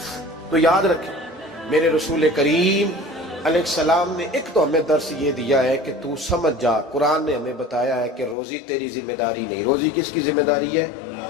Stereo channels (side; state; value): right; drops out; at 8.3 s